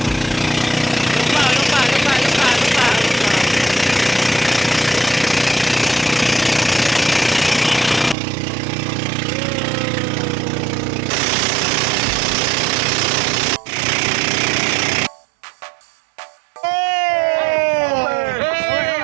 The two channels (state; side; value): drops out; left; at 8.2 s